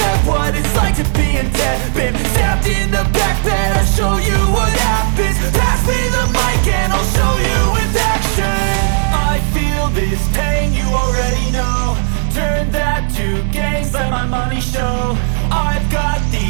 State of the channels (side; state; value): left; silent; digital silence